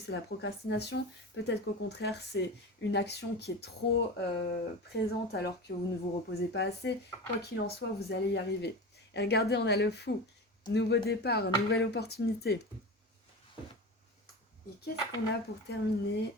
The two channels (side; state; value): both; normal; correlation 0.28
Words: la procrastination, peut-être qu'au contraire c'est une action qui est trop présente alors que vous ne vous reposez pas assez. Quoi qu'il en soit, vous allez y arriver. Et regardez, on a le fou. Nouveau départ, nouvelle opportunité. Et qu'est-ce qu'on a pour terminer?